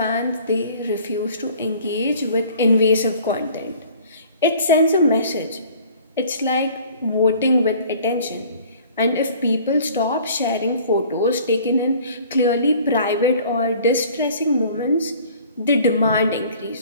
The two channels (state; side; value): inverted; both; correlation -0.51